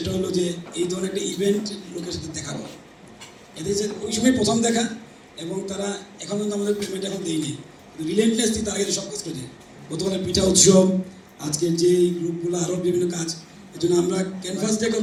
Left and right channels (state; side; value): identical; both; correlation 1.00